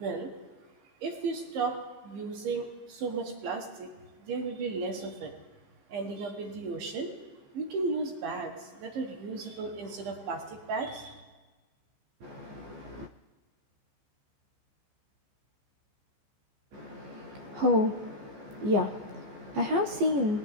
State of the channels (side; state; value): left; late; 15 ms